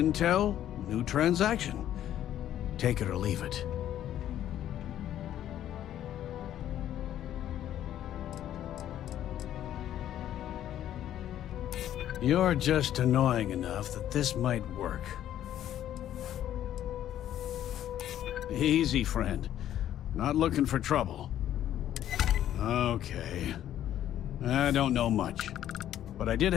new transaction. Take it or leave it. You're just annoying enough that this might work. Easy, friend. Not looking for trouble. Okay. I don't know much. But I did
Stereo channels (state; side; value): quieter; right; 11.5 dB